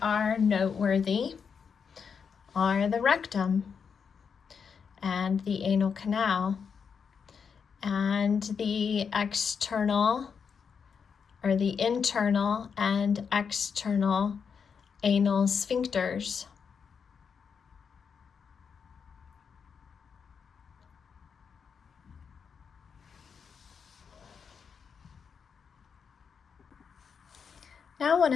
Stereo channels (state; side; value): quieter; right; 6.4 dB